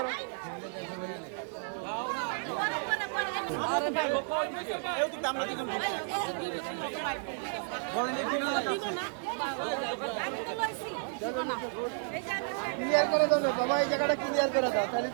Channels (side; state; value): left; silent; 56 dB below the other